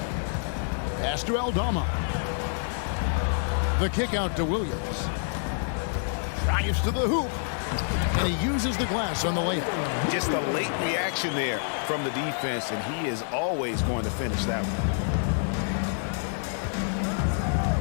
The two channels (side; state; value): right; silent; digital silence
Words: Pass to Aldama. The kick out to Williams. Drives to the hoop. And he uses the glass on the layup. Just a late reaction there from the defense, and he is always going to finish that one.